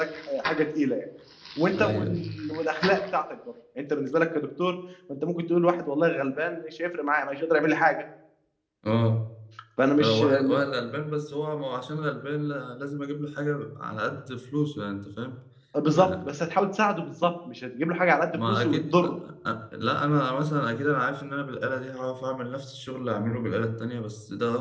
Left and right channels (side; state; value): both; identical; correlation 1.00